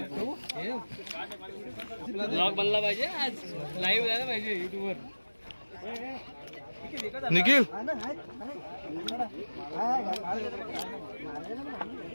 ब्लॉग बनला पाहिजे, आज लाईव्ह झाला पाहिजे युट्यूबवर। निखिल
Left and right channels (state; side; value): inverted; both; correlation -1.00